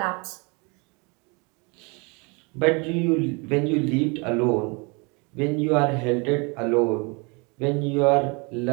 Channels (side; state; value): left; quieter; 30.3 dB